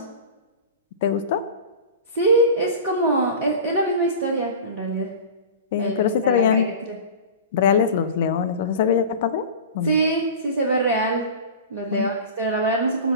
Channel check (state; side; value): inverted; both; correlation -0.33